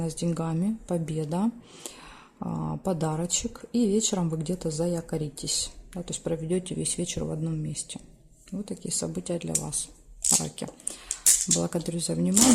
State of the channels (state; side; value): identical; both; correlation 1.00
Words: с деньгами, победа, подарочек. И вечером вы где-то заякоритесь. Да, то есть проведете весь вечер в одном месте. Вот такие события для вас, раки. Благодарю за